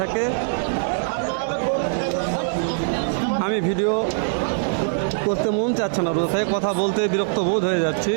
আমি ভিডিও করতে মন চাচ্ছে না, রোজ থেকে কথা বলতে বিরক্ত বোধ হয়ে যাচ্ছি।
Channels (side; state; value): left; silent; digital silence